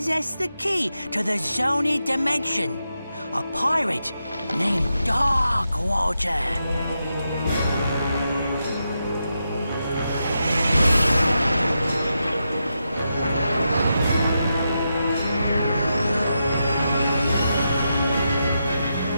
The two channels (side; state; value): both; inverted; correlation -0.86